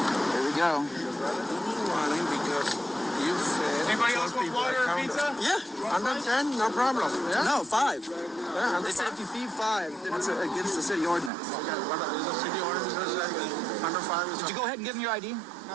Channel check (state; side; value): drops out; left; at 11.3 s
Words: There we go. Because you said. Anybody else want water or pizza? Yeah. Under 10, no problem. Yeah? No, 5. Yeah, They said if you feed 5, then it's against the city ordinance. Okay, what is the city ordinance says under 5 is Did you go ahead and give him your ID?